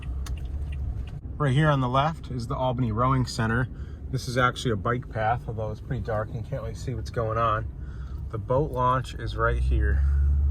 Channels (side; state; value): both; identical; correlation 1.00